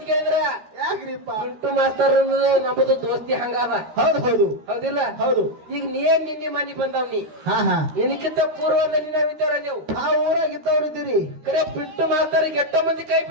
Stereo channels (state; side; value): late; left; 13 ms